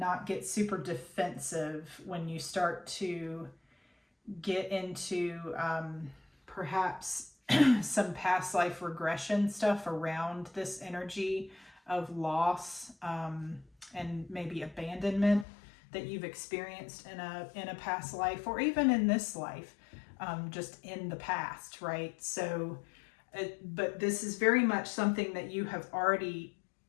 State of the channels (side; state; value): right; drops out; at 15.5 s